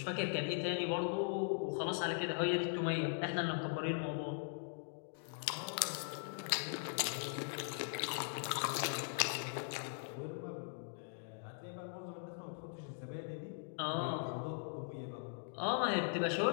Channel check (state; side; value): silent; right; digital silence